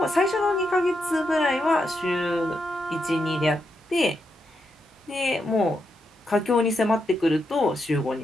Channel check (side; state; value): both; normal; correlation 0.83